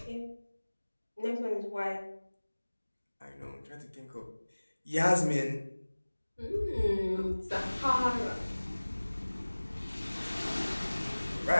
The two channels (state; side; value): inverted; both; correlation -1.00